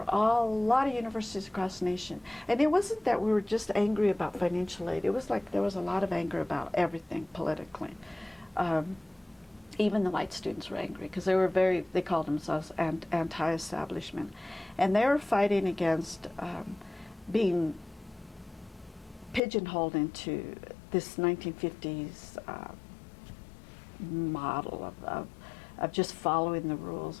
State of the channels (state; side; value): drops out; right; at 19.4 s